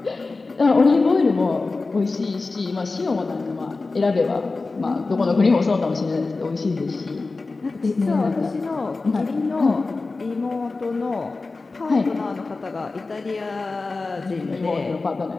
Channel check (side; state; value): right; quieter; 3.7 dB